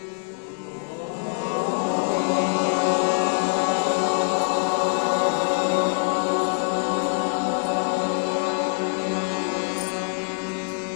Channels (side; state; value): right; silent; digital silence